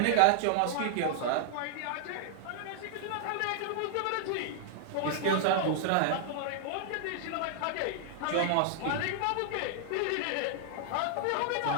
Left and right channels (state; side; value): different; both; correlation -0.01